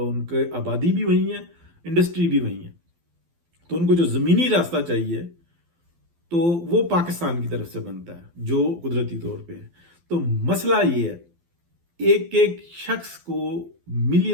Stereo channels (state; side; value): late; left; 12 ms